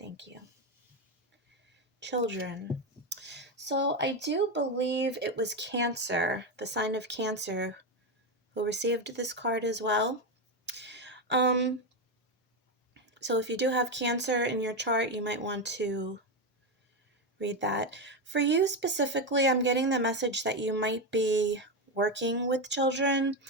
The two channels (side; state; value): both; normal; correlation 0.11